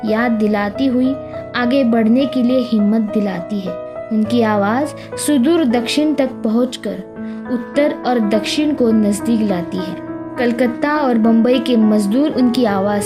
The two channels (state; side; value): identical; both; correlation 1.00